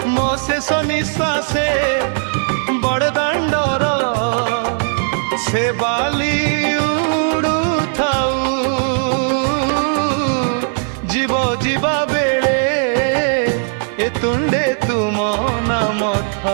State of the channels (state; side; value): silent; left; digital silence